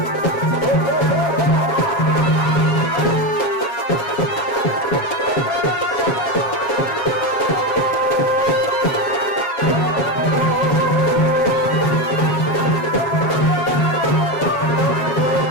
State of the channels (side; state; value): right; late; 7.7 ms